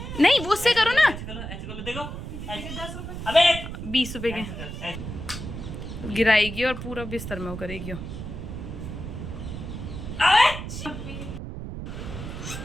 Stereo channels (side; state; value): right; noise; rumble, 8 dB below the sound